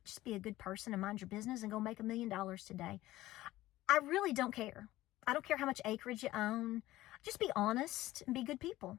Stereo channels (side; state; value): right; quieter; 16.4 dB